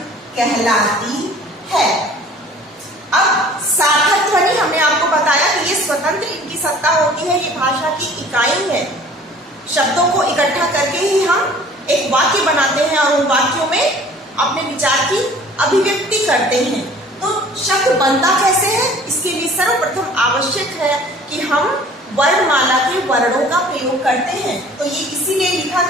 कहलाती है। अब सार्थक ध्वनि हमने आपको बताया कि ये स्वतंत्र इनकी सत्ता होती है, ये भाषा की इकाई है। शब्दों को इकट्ठा करके ही हम एक वाक्य बनाते हैं और उन वाक्यों में अपने विचार की अभिव्यक्ति करते हैं। तो शब्द बनता कैसे है, इसके लिए सर्वप्रथम आवश्यक है कि हम वर्णमाला के वर्णों का प्रयोग करते हैं। तो ये इसीलिए लिखा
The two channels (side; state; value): both; normal; correlation 0.49